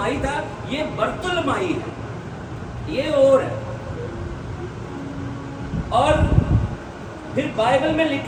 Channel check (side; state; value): both; identical; correlation 1.00